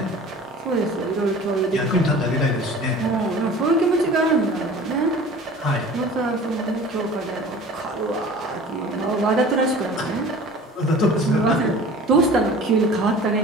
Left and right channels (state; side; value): normal; both; correlation 0.43